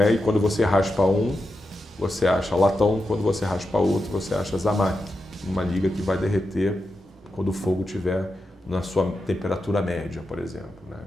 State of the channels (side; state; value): both; normal; correlation 0.89